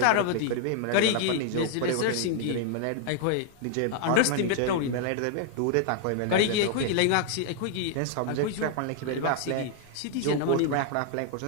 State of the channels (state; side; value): different; both; correlation 0.00